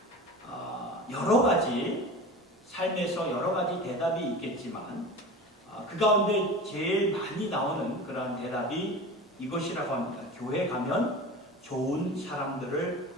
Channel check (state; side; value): normal; both; correlation 0.33